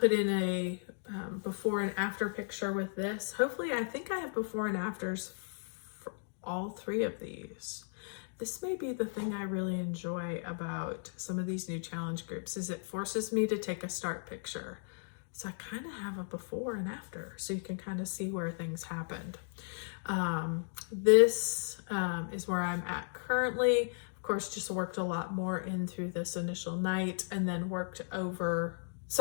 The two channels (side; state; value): right; silent; digital silence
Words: in a before and after picture with this. Hopefully, I think I have before and afters for all 3 of these. This may be the thing I really enjoy about some of these new challenge groups, is it forces me to take a start picture. So I kind of have a before and after, so you can kind of see where things happened. This is where I'm at currently. Of course, just worked a lot more in through this initial night, and then worked over